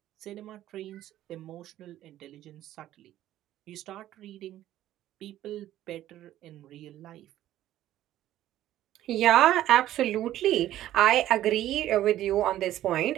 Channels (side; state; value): left; quieter; 13.3 dB